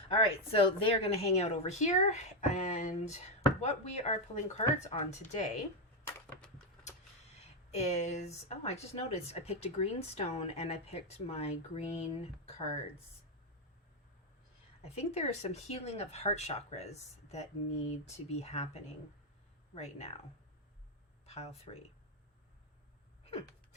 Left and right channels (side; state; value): both; normal; correlation 0.05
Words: All right, so they're going to hang out over here. And what we are pulling cards on today is, oh, I just noticed I picked a green stone and I picked my green cards. I think there is some healing of heart chakras that need to be happening right now. Pile 3.